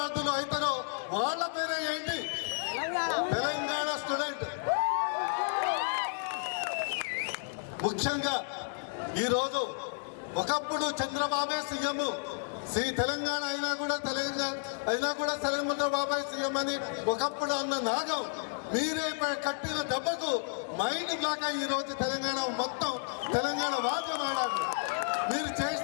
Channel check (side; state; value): right; silent; digital silence